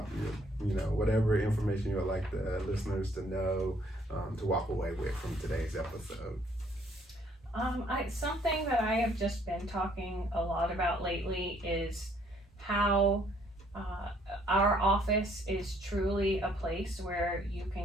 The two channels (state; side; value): normal; both; correlation 0.64